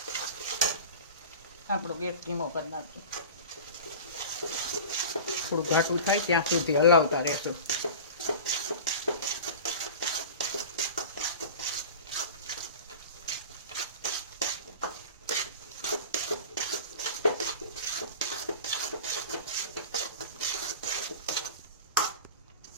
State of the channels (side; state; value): both; inverted; correlation -0.35